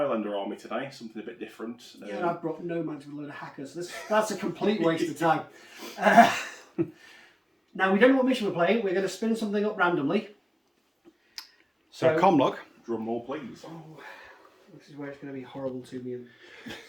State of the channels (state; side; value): identical; both; correlation 1.00